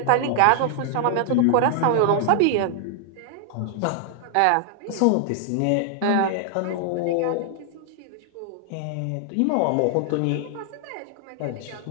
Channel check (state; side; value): different; both; correlation 0.00